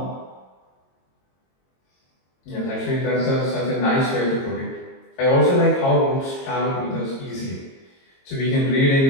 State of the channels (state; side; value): late; right; 22 ms